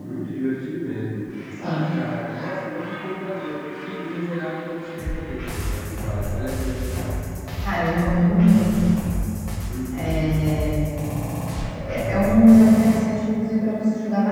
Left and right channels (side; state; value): both; identical; correlation 1.00